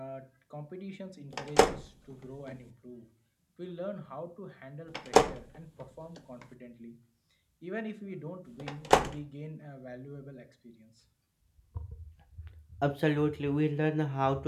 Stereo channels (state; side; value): identical; both; correlation 1.00